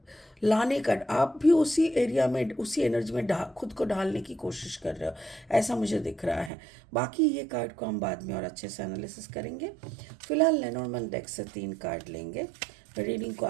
लाने का आप भी उसी एरिया में, उसी एनर्जी में खुद को ढालने की कोशिश कर रहे हो, ऐसा मुझे दिख रहा है. बाकी ये कार्ड को हम बाद में और अच्छे से एनालिसिस करेंगे. फिलहाल लेनोर्मन डेक से 3 कार्ड लेंगे रीडिंग को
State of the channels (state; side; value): drops out; left; at 6.5 s